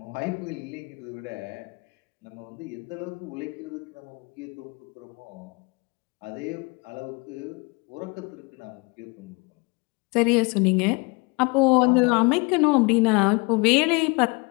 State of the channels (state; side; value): quieter; right; 29.1 dB